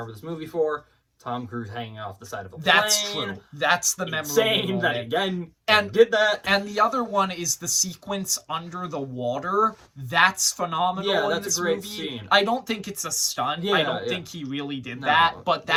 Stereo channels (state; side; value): identical; both; correlation 1.00